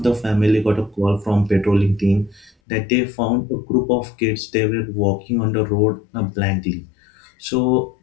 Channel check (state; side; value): drops out; right; at 2.5 s